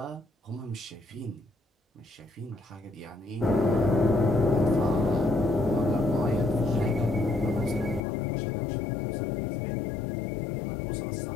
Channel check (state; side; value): drops out; right; at 8.0 s